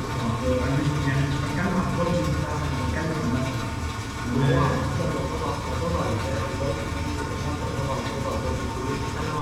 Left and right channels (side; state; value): both; identical; correlation 1.00